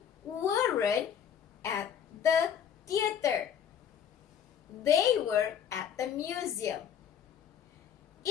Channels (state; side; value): quieter; right; 8.5 dB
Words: weren't at the theater. They were at the museum.